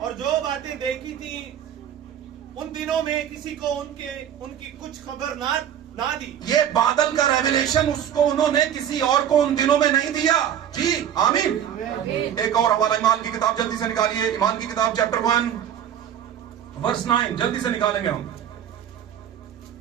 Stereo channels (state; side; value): quieter; left; 9.7 dB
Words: और जो बातें देखी थी उन दिनों में किसी को उनकी कुछ खबर ना दी। ये बादल का रेवलेशन उसको उन्होंने किसी और को उन दिनों में नहीं दिया। जी आमीन। एक और हवाला ईमान की किताब जल्दी से निकालिए। ईमान की किताब चैप्टर 1 वर्स 9 जल्दी से निकालेंगे हम।